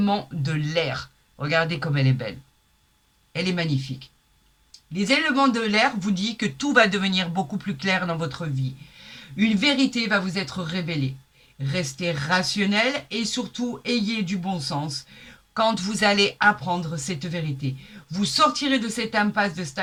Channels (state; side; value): identical; both; correlation 1.00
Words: de l'air. Regardez comme elle est belle. Elle est magnifique. Les éléments de l'air vous disent que tout va devenir beaucoup plus clair dans votre vie. Une vérité va vous être révélée. Restez rationnel et surtout ayez du bon sens quand vous allez apprendre cette vérité. Vous sortirez de cette impasse de